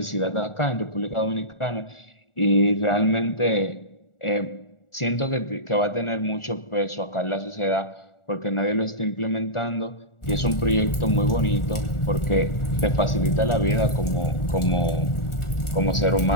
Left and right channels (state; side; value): late; right; 1.4 ms